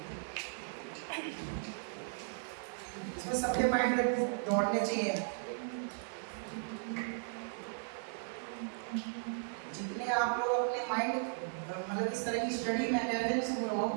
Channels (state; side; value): silent; left; digital silence